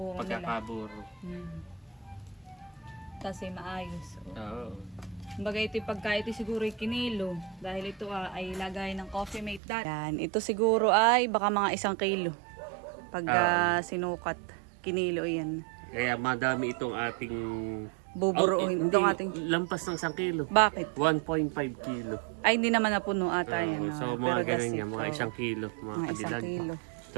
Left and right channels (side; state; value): left; drops out; at 9.6 s